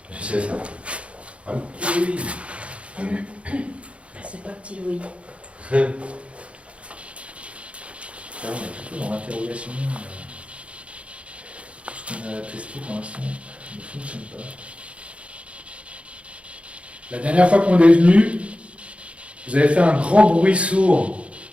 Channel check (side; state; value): left; late; 0.061 ms